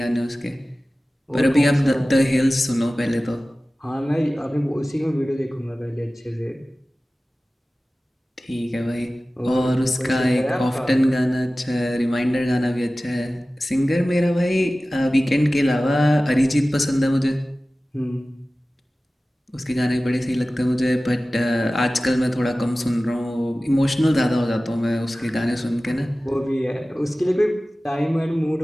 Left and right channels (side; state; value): both; normal; correlation 0.97